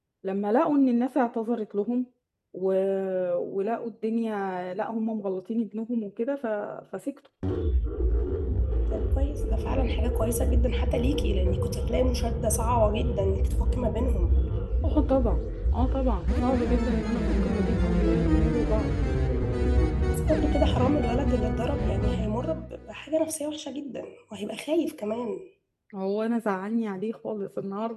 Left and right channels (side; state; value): both; identical; correlation 1.00